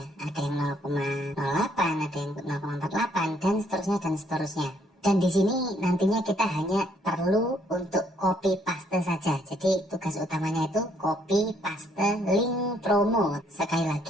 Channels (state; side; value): normal; both; correlation 0.68